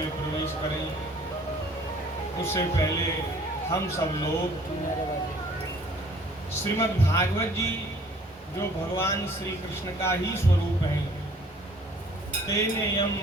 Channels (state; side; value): normal; both; correlation 0.55